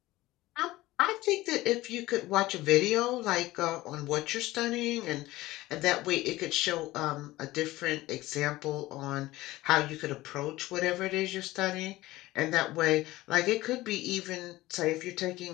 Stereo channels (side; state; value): right; quieter; 17.9 dB